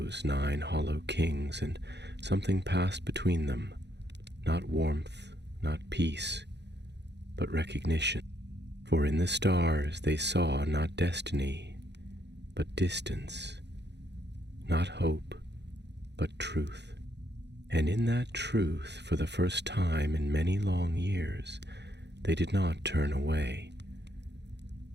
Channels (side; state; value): left; late; 0.50 ms